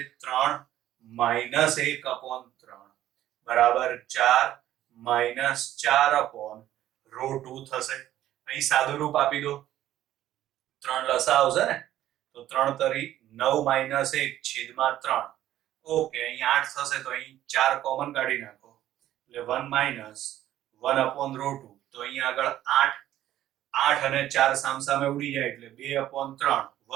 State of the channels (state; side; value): quieter; left; 13.0 dB